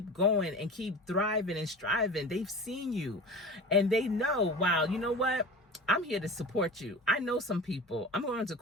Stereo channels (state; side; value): normal; both; correlation 0.34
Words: going and keep thriving and striving. They've seen you, and they know, wow, you know what? I'm here to support you. I know some people. I'm going to